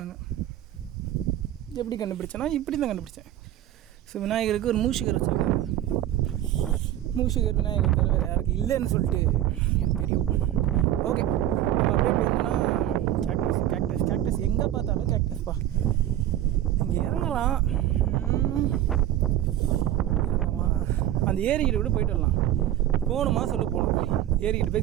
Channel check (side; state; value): left; quieter; 12.6 dB